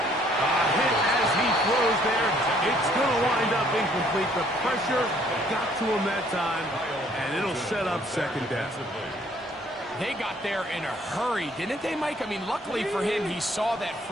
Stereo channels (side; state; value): both; normal; correlation 0.62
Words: A hit as he throws there. It's going to wind up incomplete. The pressure got to him that time, and it'll set up 2nd down. They got there in a hurry, didn't they, Mike? I mean, luckily for him, he saw that